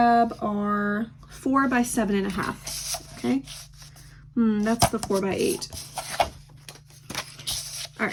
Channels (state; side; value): identical; both; correlation 1.00